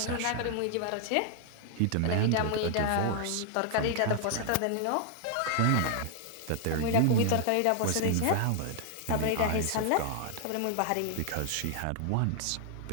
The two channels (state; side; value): different; both; correlation 0.00